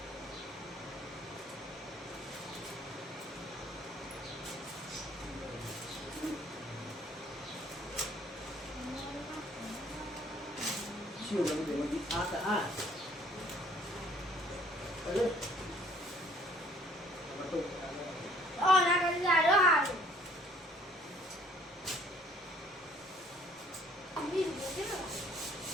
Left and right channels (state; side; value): normal; both; correlation 0.59